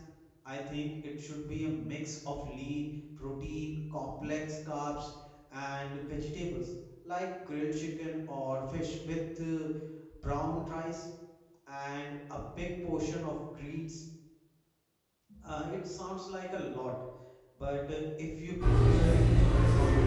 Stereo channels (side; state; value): both; identical; correlation 1.00